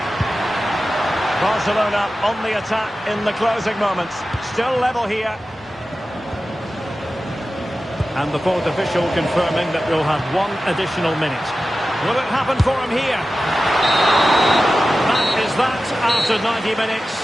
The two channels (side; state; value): both; normal; correlation 0.94